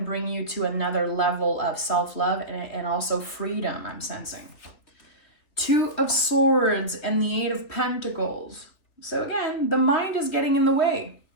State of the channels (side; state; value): right; late; 3.1 ms